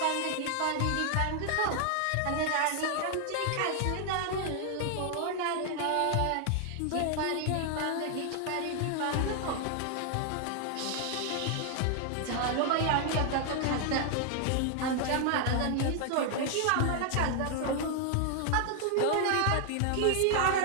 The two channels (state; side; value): different; both; correlation 0.00